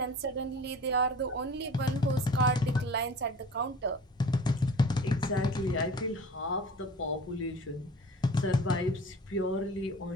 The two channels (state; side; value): normal; both; correlation 0.42